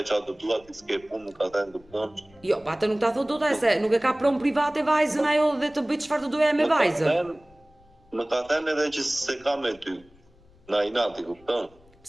çfarë të dua, ti s'ke punë, më ka thënë, kupton? Jo, atë nuk ta thot dot ai se nuk e ka pronë private vajzën ajo dhe të bëj çfarë të doja me vajzën. Më ka thënë edhe që se ka me ty. Na inati, kupton?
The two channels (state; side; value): noise; left; rumble, 28 dB below the sound